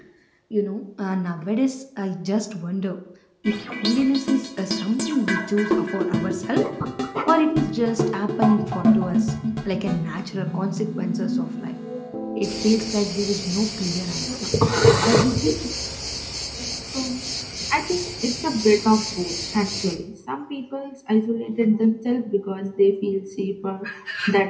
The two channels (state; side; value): identical; both; correlation 1.00